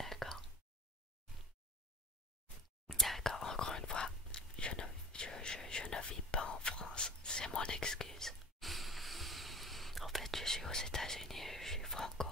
D'accord, encore une fois, je ne vis pas en France, c'est mon excuse. En fait, je suis aux États-Unis, je suis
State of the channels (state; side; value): normal; both; correlation 0.34